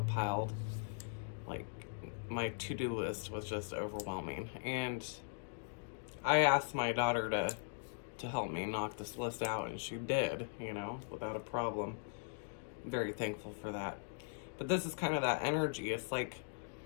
piled. Like, my to-do list was just overwhelming. And I asked my daughter to help me knock this list out, and she did, you know, without a problem. I'm very thankful for that. But this is kind of that energy. It's like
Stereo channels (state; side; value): silent; right; digital silence